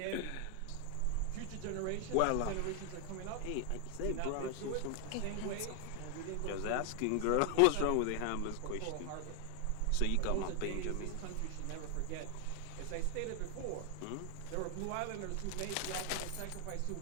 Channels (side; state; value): both; different; correlation 0.00